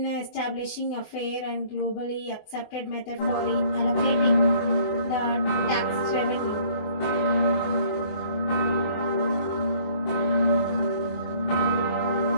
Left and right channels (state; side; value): late; right; 24 ms